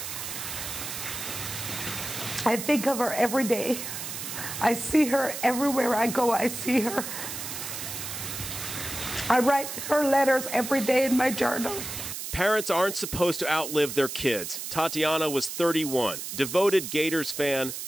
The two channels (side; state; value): right; noise; hiss, 7 dB below the sound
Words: I think of her every day. I see her everywhere I go. I see her. I write her letters every day in my journal. Parents aren't supposed to outlive their kids. Tatiana was 31, devoted Gators fan,